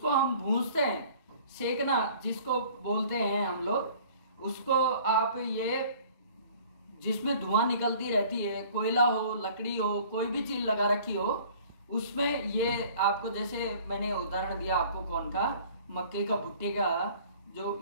हम भूंजते हैं, सेकना जिसको बोलते हैं हम लोग, उसको आप ये जिसमें धुआं निकलती रहती है, कोयला हो, लकड़ी हो, कोई भी चीज लगा रखी हो, उसमें ये आपको, जैसे मैंने उदाहरण दिया आपको कौन का, मक्के का, भुट्टे का, जो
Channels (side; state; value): both; inverted; correlation -0.50